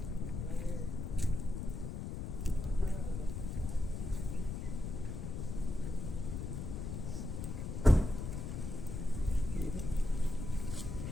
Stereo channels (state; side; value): noise; left; rumble, 4 dB below the sound